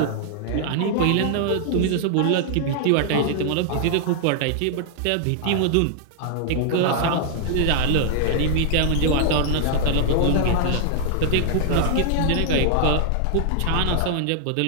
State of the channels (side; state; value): both; different; correlation -0.01